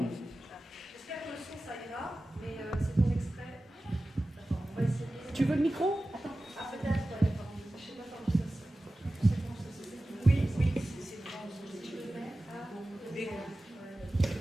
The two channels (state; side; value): normal; both; correlation 0.96